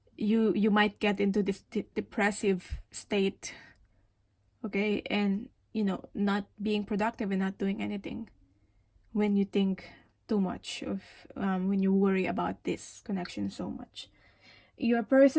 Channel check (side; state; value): both; identical; correlation 1.00